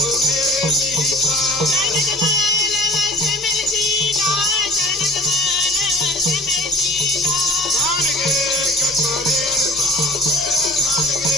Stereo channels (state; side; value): normal; both; correlation 0.46